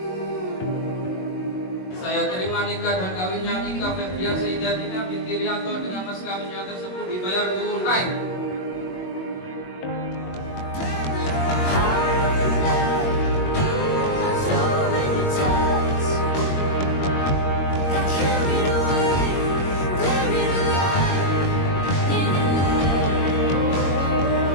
Saya terima nikah dan kawinnya Ika Febrian Saidatina binti Rianto dengan mas kawinnya tersebut dibayar tunai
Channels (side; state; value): right; late; 22 ms